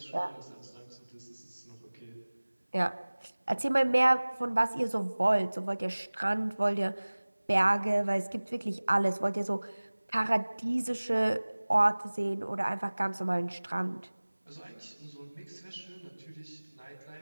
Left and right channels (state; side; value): inverted; both; correlation -1.00